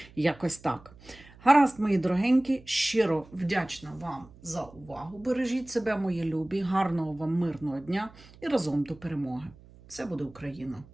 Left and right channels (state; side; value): noise; right; hum, 23 dB below the sound